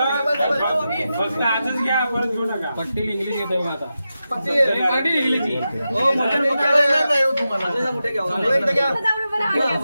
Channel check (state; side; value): inverted; both; correlation -0.90